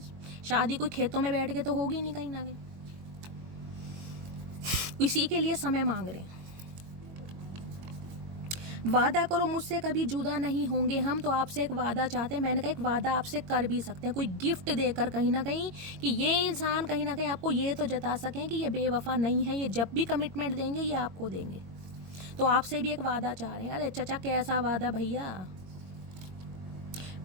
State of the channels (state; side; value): late; left; 22 ms